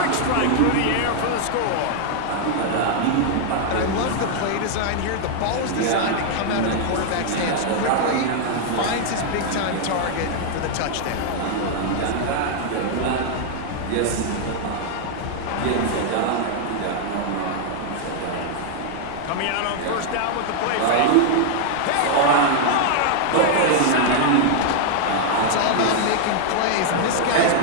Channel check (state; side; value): different; both; correlation -0.01